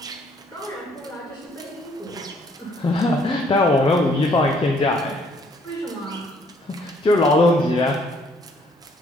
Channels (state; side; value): normal; both; correlation 0.64